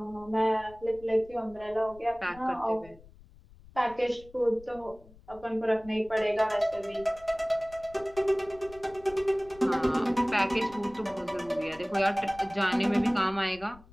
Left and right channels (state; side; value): noise; left; rumble, 22 dB below the sound